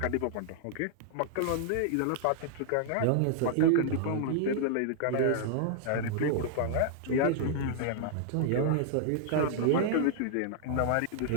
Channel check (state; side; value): different; both; correlation -0.01